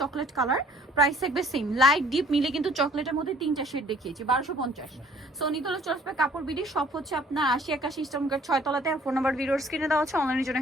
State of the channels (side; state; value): both; normal; correlation 0.57